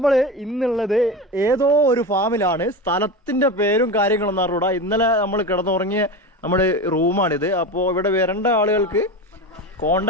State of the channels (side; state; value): both; normal; correlation 0.24